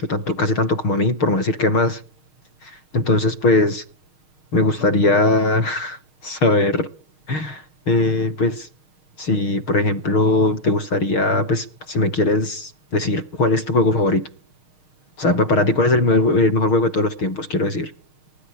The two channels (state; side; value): late; right; 6.5 ms